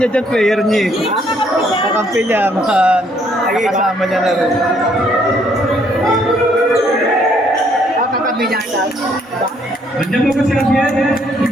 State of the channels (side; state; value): both; normal; correlation 0.67